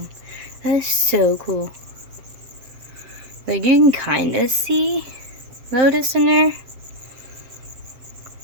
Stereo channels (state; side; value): late; left; 7.5 ms